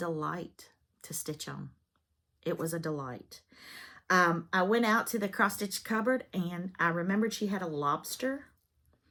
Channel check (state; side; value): identical; both; correlation 1.00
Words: to stitch on. It was a delight. I went out to the cross-stitch cupboard, and I remembered she had a lobster